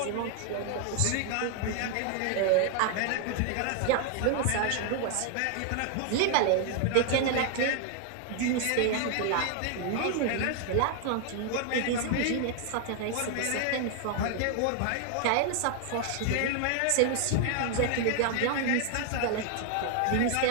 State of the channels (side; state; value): both; different; correlation 0.00